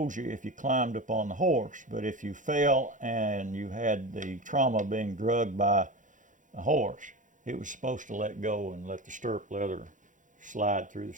you if you climbed up on the horse. But if you fell and you had the trauma of being drugged by a horse, it was supposed to let go and let the stirrup leather slide through the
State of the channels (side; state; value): left; late; 0.37 ms